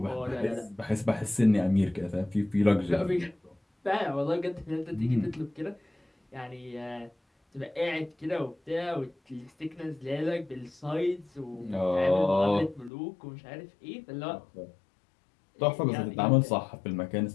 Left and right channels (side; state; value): right; drops out; at 12.9 s